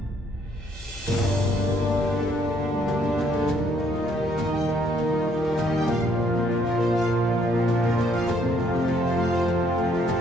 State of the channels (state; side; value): normal; both; correlation 0.68